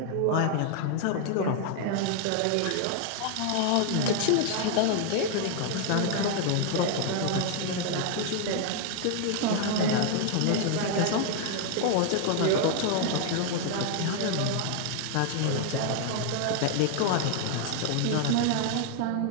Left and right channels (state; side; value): different; both; correlation 0.00